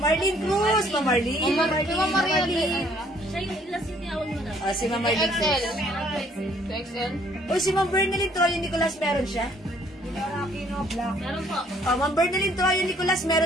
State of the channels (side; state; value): both; normal; correlation 0.62